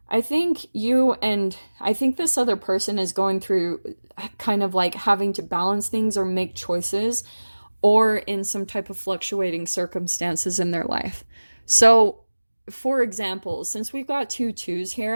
I think this other person is going through kind of like having to balance things or make choices, or in some type of fluctuating circumstances in their life. So, for example, since we've got two twos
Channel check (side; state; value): both; inverted; correlation -1.00